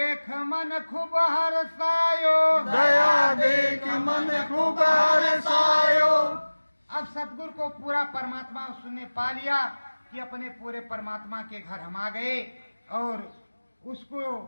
मन खूब हर्षायो, दया देख मन खूब हर्षायो। अब सतगुरु को पूरा परमात्मा उसने पा लिया कि अपने पूरे परमात्मा के घर हम आ गए, और उसको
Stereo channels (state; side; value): inverted; both; correlation -1.00